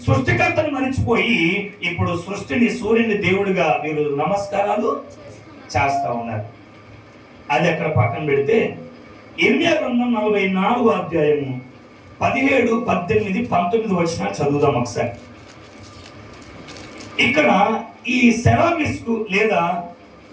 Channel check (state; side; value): identical; both; correlation 1.00